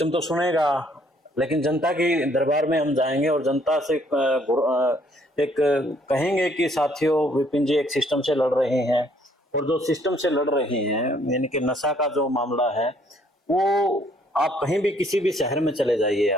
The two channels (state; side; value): normal; both; correlation 0.64